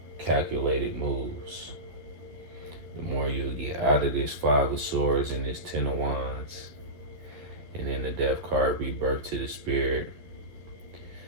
calculated moves. The more you'll get out of this Five of Swords and this Ten of Wands, and then the Death card, rebirth to the Spirit.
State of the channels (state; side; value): late; left; 11 ms